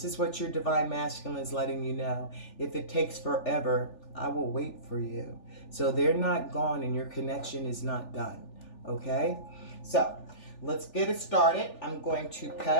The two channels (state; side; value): late; right; 3.4 ms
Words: is what your divine masculine is letting you know. If it takes forever, I will wait for you. So they're not gone and your connection is not done, okay? So let's get it started. I'm going to